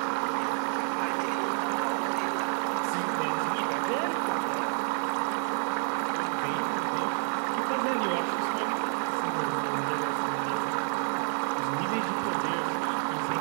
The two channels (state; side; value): quieter; left; 38.4 dB